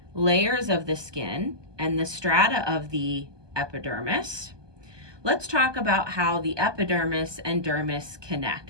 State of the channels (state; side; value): late; left; 1.2 ms